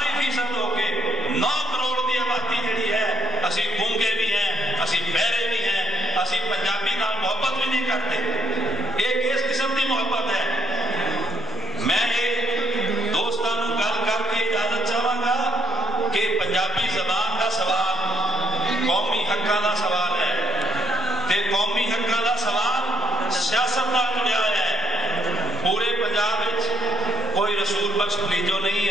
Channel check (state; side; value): normal; both; correlation 0.67